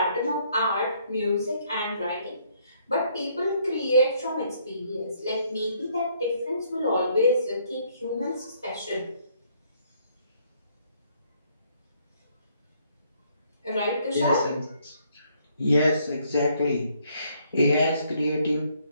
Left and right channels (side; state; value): both; inverted; correlation -0.67